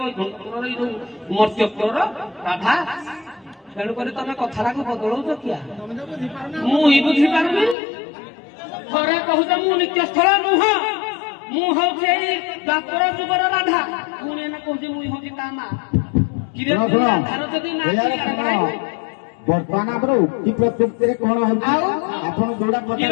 ବୈକୁଣ୍ଠପୁରର ଏଇ ଯୋଉ ମର୍ତ୍ତ୍ୟପୁରର ରାଧା। ତେଣୁକରି ତମେ କଥାଟାକୁ ବଦଳଉଛ କିଆ ମୁଁ ହିଁ ବୁଝିପାରୁନି। ଥରେ କହୁଛ ମୁଁ ନିତ୍ୟସ୍ଥଳ ନୁହଁ ମୁଁ ହଉଛି ଏଇ ଦ୍ୱାପର ଯୁଗର ରାଧା ପୁଣି ଏନା କହୁଛି ମୁଁ ହଉଛି ତା ମା। ରାଧାର ଯଦି ନା ବର୍ତ୍ତମାନ ଆମର ଉକ୍ତି ପ୍ରତ୍ୟୁକ୍ତିରେ କଣ ହଉଛି ଆପଣ ଯୋଉଟା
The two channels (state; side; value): drops out; right; at 7.8 s